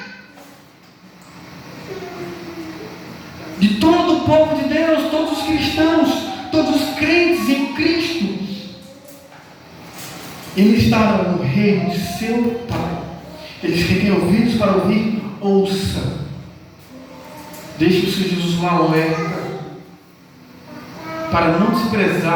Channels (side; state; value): both; identical; correlation 1.00